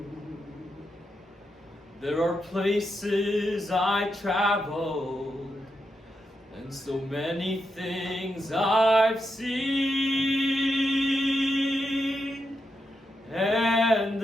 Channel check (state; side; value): normal; both; correlation 0.84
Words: There are places I traveled, and so many things I've seen, and